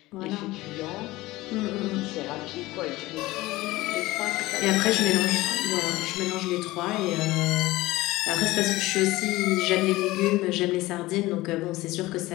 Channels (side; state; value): right; quieter; 18.8 dB